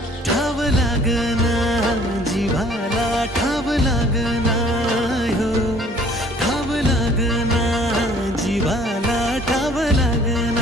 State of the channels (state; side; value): normal; both; correlation 0.55